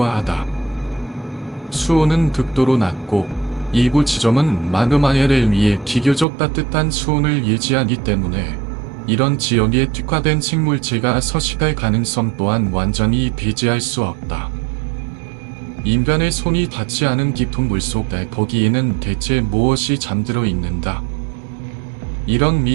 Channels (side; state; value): left; drops out; at 6.2 s